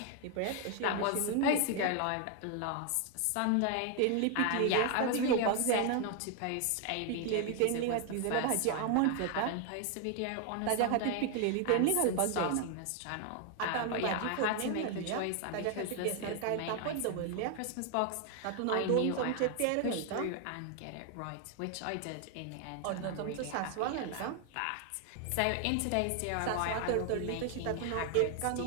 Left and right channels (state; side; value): different; both; correlation 0.00